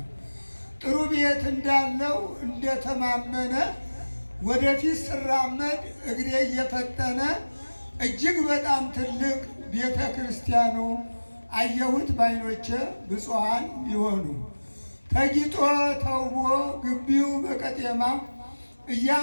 ጥሩ ቤት እንዳለው እንደተማመነ ወደፊት ስራመድ እግሬ እየፈጠነ እጅግ በጣም ትልቅ ቤተ ክርስቲያኑ አየሁት ባይኖቼ ብፁዓን ይሆኑ ተጊጦ ተውቦ ግቢው በቀጤማ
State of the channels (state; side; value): inverted; both; correlation -1.00